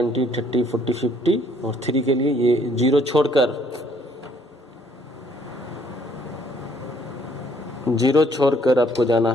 30, 40, 50 और 3 के लिए ये 0 छोड़कर आपको जाना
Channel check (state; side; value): normal; both; correlation 0.64